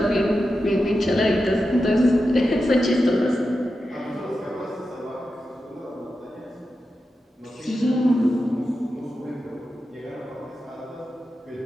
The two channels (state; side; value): normal; both; correlation 0.90